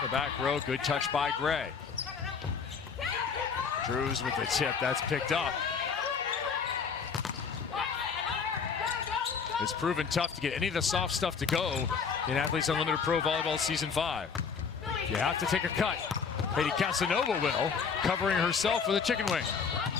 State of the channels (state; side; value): quieter; right; 5.9 dB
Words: the back row. Good touch by Gray. Drews with the tip. That's picked up. It's proven tough to get any of the soft stuff to go in Athletes Unlimited Pro Volleyball Season 5. You have to take a cut. Katie Casanova will, covering herself with a chicken wing.